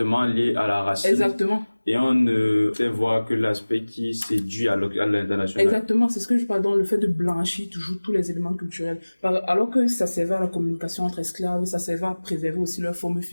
liée à la racine. Exactement. et on ne fait voir que l'aspect qui séduit à l'international. Exactement, c'est ce que je parle dans le fait de blanchir toujours tous les éléments culturels. Alors que ça servait à la communication entre esclaves, ça servait à préserver aussi leur forme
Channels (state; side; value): inverted; both; correlation -1.00